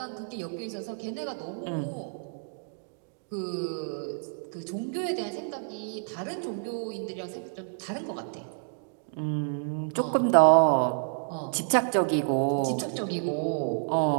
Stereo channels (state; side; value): silent; left; digital silence